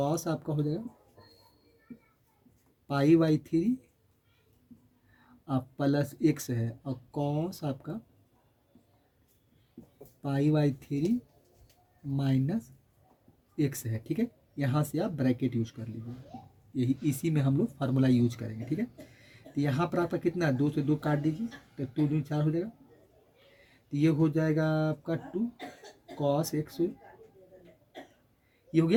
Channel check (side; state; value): both; identical; correlation 1.00